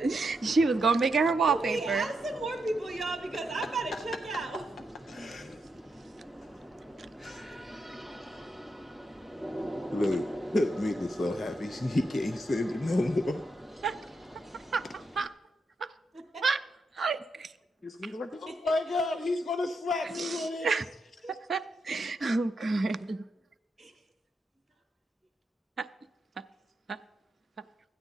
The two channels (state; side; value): normal; both; correlation 0.84